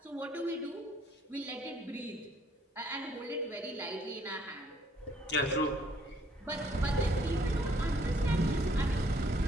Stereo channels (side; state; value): both; normal; correlation 0.64